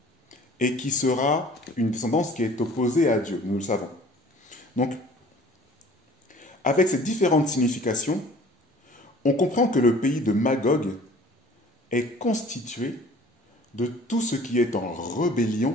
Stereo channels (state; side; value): normal; both; correlation 0.49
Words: et qui sera une descendance qui est opposée à Dieu, nous le savons. Donc, avec ces différentes significations, on comprend que le pays de Magog est constitué de tout ce qui est en